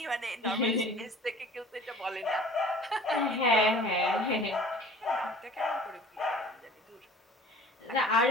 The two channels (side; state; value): both; normal; correlation 0.46